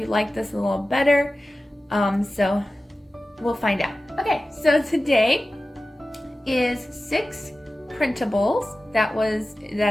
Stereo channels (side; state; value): both; normal; correlation 0.95